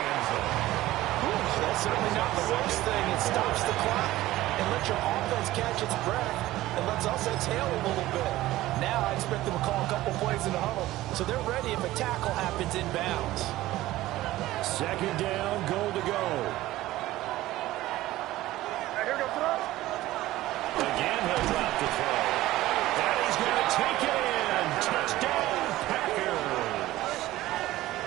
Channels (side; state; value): left; quieter; 16.3 dB